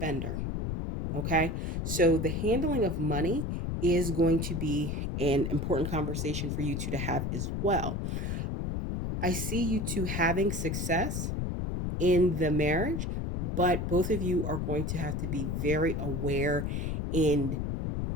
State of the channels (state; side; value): noise; left; rumble, 1 dB below the sound